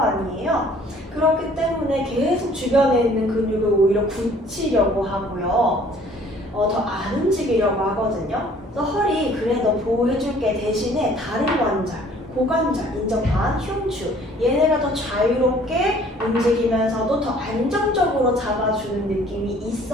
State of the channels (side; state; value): both; normal; correlation 0.55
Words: 그렇기 때문에 계속 주변에 있는 근육을 오히려 굳히려고 하고요. 더 안 움직이려고 하거든요. 그래서 허리 그래 너 보호해줄게 대신에 다리 관절, 고관절, 인접한, 흉추 얘네가 더 자유롭게 움직이면서도 더 안정적으로 잡아주는 느낌이